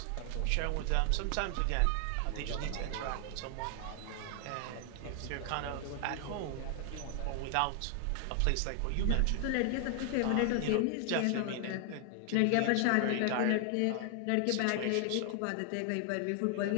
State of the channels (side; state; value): both; different; correlation 0.00